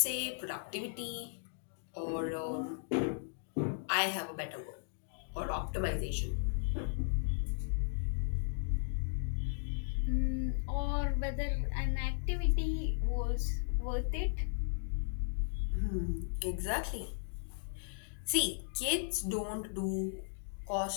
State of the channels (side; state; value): right; silent; digital silence